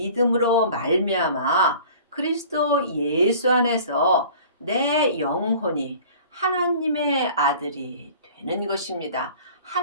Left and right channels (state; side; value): inverted; both; correlation -0.46